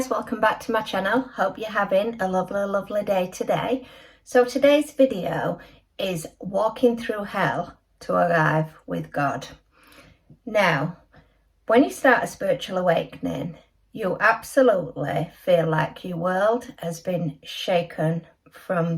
welcome back to my channel. Hope you're having a lovely day today. So today's video is walking through hell to arrive with God. Now, when you start a spiritual awakening, you absolutely feel like your world has been shaken from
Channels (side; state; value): both; identical; correlation 1.00